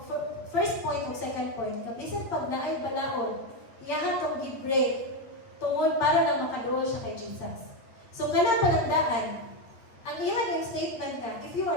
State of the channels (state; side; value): late; right; 8.8 ms